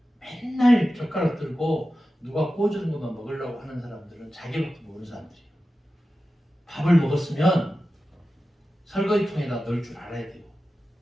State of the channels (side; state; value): both; normal; correlation 0.93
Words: 맨날 젓가락 들고 누가 구워주는 것만 먹으려고 하는 사람들은 자기밖에 모르는 사람들이에요. 밥을 먹었으면 설거지통에다 넣을 줄 알아야 돼요.